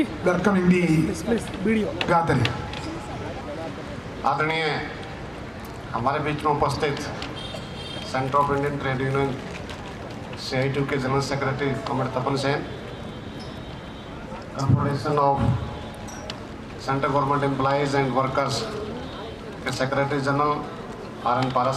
welcoming the gathering. आदरणीय हमारे बीच में उपस्थित Centre of Indian Trade Union CITU के general secretary comrade Tapan Sen, Confederation of Central Government Employees and Workers के secretary general RN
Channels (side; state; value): both; identical; correlation 1.00